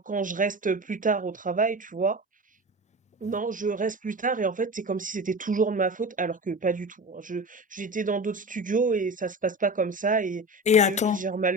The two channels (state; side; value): normal; both; correlation 0.30